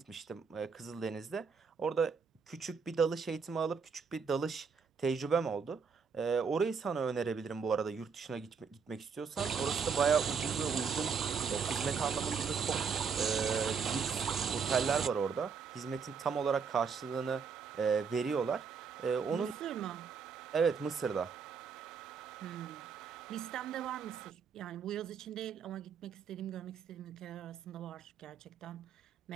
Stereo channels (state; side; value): quieter; left; 5.9 dB